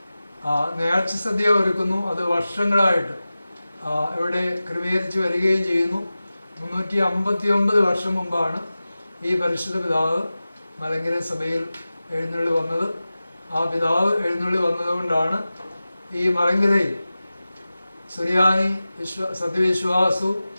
നേർച്ച സദ്യ ഒരുക്കുന്നു. അത് വർഷങ്ങളായിട്ട് ഇവിടെ ക്രമീകരിച്ച് വരികയും ചെയ്യുന്നു. 359 വർഷം മുമ്പാണ് ഈ പരിശുദ്ധ പിതാവ് മലങ്കര സഭയിൽ എഴുന്നള്ളി വന്നത്. ആ പിതാവ് എഴുന്നള്ളി വന്നതുകൊണ്ടാണ് ഈ മലങ്കരയിൽ സുറിയാനി സത്യവിശ്വാസവും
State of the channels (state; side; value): inverted; both; correlation -0.96